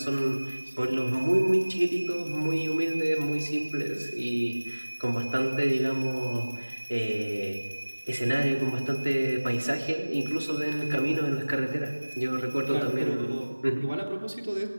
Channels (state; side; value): inverted; both; correlation -1.00